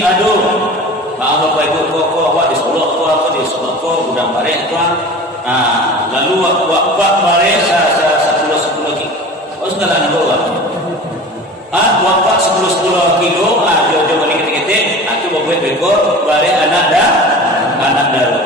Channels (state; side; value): normal; both; correlation 0.37